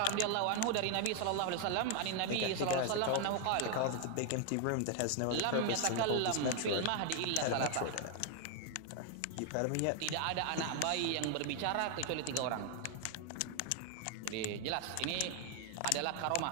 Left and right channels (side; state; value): both; different; correlation 0.00